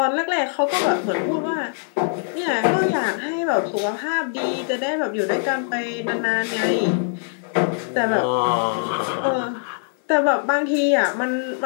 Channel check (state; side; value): silent; right; digital silence